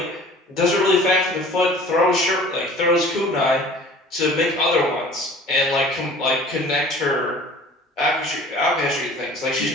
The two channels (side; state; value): both; normal; correlation 0.47